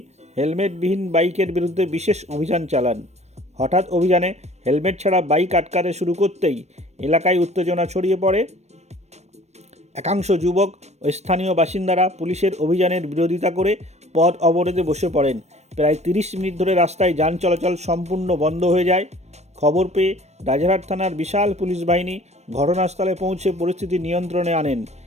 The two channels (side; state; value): left; late; 0.32 ms